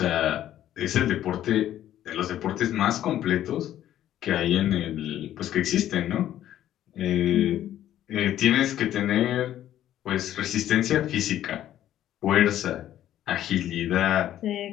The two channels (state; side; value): quieter; right; 12.1 dB